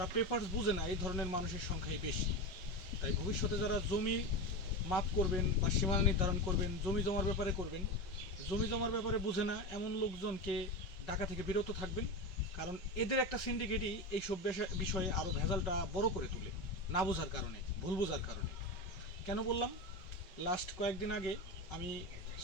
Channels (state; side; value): late; right; 5.3 ms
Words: পেপারস বুঝে না এই ধরনের মানুষের সংখ্যাই বেশি। তাই ভবিষ্যতে যারা জমি মাপ করবেন বা সীমানা নির্ধারণ করবেন, জমি জমার ব্যাপারে করবেন, জমি জমার ব্যাপারে বুঝে না এমন লোকজনকে ডাকা থেকে বিরত থাকবেন। কারণ এদের একটা সিন্ডিকেটই এইসব বিষয়ে আরও ভেজালটা বড় করে তোলে, না বোঝার কারণে, ভুল বোঝার কারণে। কেন বললাম, লাস্ট কয়েকদিন আগে আমি